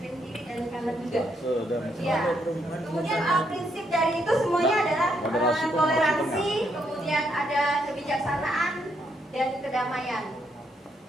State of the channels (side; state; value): both; normal; correlation 0.76